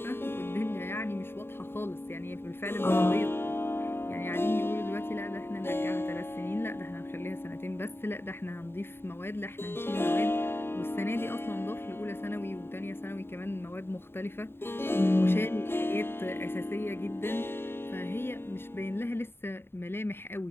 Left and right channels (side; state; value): right; late; 0.11 ms